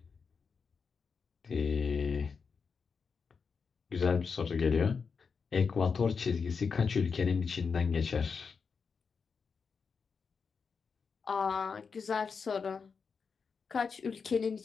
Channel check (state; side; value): quieter; right; 5.5 dB